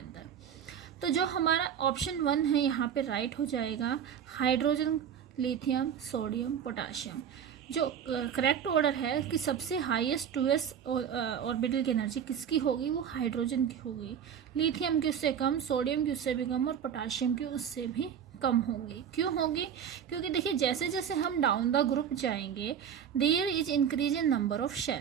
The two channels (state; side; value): quieter; left; 8.3 dB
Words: तो जो हमारा ऑप्शन 1 है यहाँ पे राइट हो जाएगा. Hydrogen, lithium, sodium, potassium. जो करेक्ट ऑर्डर है कि सबसे हाईएस्ट 2s ऑर्बिटल की एनर्जी किसकी होगी? वो हाइड्रोजन की होगी. लिथियम की उससे कम, सोडियम की उससे भी कम और पोटाशियम की उससे भी कम होगी. क्यों होगी? क्योंकि देखिए जैसे जैसे हम डाउन द ग्रुप जाएंगे there is increase in number of